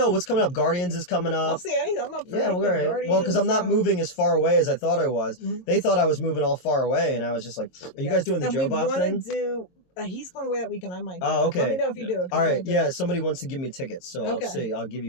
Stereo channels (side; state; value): right; late; 22 ms